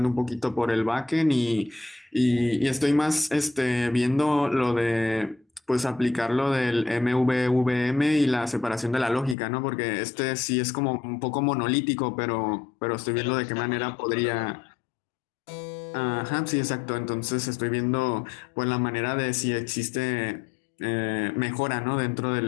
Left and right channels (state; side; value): drops out; right; at 9.3 s